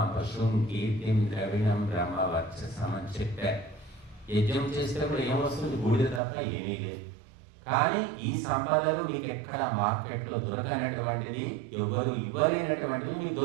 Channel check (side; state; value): left; drops out; at 6.2 s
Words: పశుం కీర్తిం ద్రవిణం బ్రహ్మవర్చసం అని చెప్పారు. యజ్ఞం చేసేటప్పుడు ఏమొస్తుంది? బూడిద తప్ప ఏమీ లేదు. కానీ ఈ సంపదలు మీకు ఎక్కడ మార్కెట్లో దొరకనటువంటిది, ఎవరు ఇవ్వలేనటువంటివి మీకు